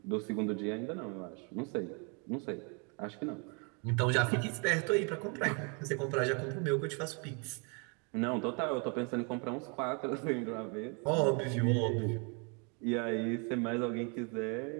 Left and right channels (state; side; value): quieter; left; 35.0 dB